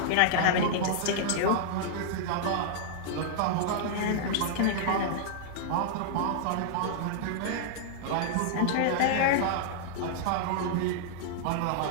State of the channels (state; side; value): different; both; correlation -0.01